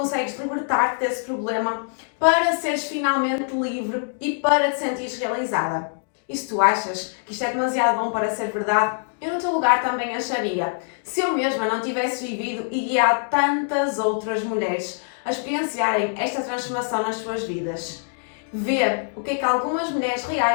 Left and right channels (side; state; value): right; silent; digital silence